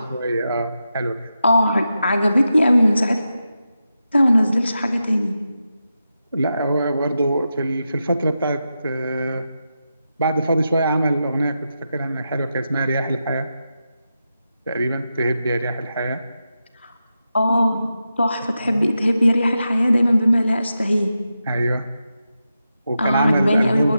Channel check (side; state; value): both; inverted; correlation -0.89